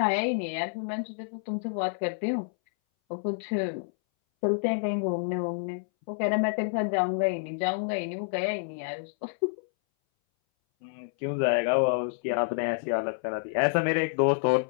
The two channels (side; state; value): right; silent; 59 dB below the other